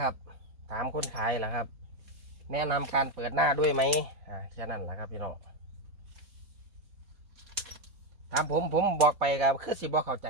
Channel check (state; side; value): late; left; 4.1 ms